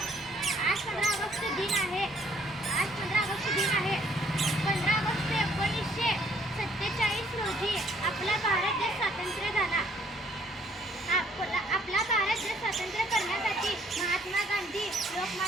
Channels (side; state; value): both; normal; correlation 0.64